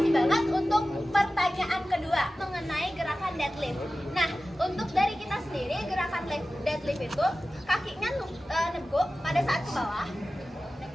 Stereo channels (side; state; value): both; normal; correlation 0.95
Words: banget untuk pertanyaan kedua mengenai gerakan deadlift. Nah, untuk dari kita sendiri gerakan deadlift itu kakinya neguk pada saat ke bawah,